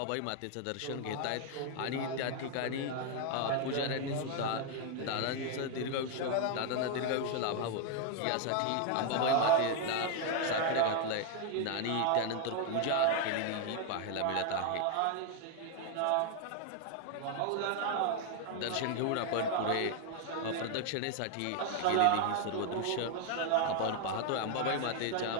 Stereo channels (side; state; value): both; different; correlation 0.01